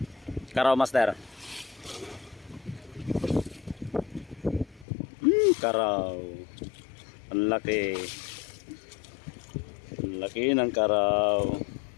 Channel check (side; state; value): right; drops out; at 4.9 s